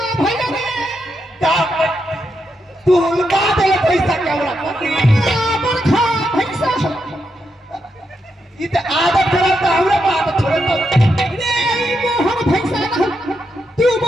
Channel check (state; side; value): normal; both; correlation 0.83